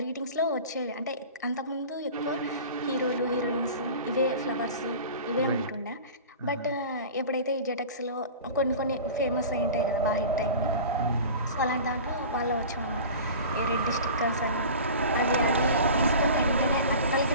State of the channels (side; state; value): both; inverted; correlation -0.37